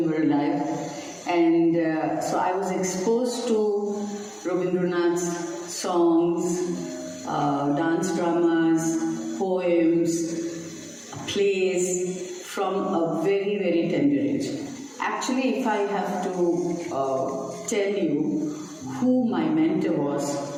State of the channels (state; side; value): identical; both; correlation 1.00